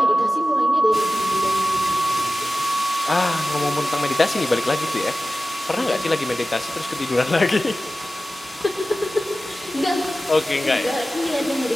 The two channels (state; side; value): normal; both; correlation 0.95